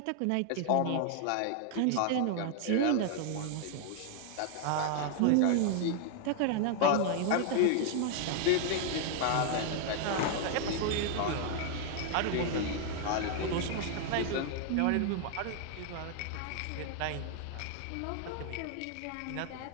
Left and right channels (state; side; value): different; both; correlation 0.00